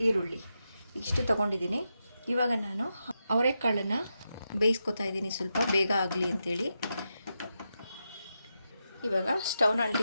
ಈರುಳ್ಳಿ ಇಷ್ಟು ತಗೊಂಡಿದ್ದೀನಿ. ಇವಾಗ ನಾನು ಅವರೆಕಾಳನ್ನು ಬೇಯಿಸ್ಕೊತಾ ಇದ್ದೀನಿ, ಸ್ವಲ್ಪ ಬೇಗ ಆಗಲಿ ಅಂಥೇಳಿ. ಇವಾಗ ಸ್ಟವ್ನ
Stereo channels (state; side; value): inverted; both; correlation -0.87